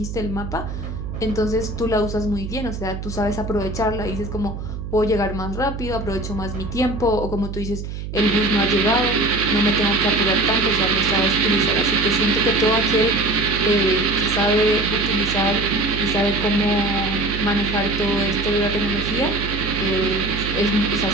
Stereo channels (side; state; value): right; noise; hum, 7 dB below the sound